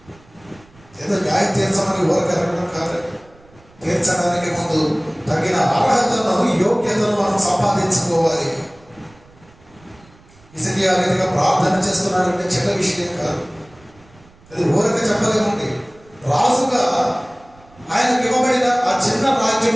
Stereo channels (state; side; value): noise; right; rumble, 27 dB below the sound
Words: ఏదో న్యాయం తీర్చమని ఊరకరగడం కాదు. తీర్చడానికి ముందు తగిన అర్హతను, యోగ్యతను మనం సంపాదించుకోవాలి. హిజ్కియా రీతిగా ప్రార్థన చేస్తున్నాడంటే చిన్న విషయం కాదు. అది ఊరక చెప్పలేమండి. రాజుగా ఆయనకు ఇవ్వబడిన ఆ చిన్న